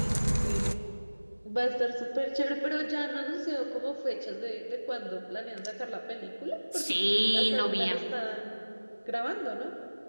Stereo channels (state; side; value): inverted; both; correlation -1.00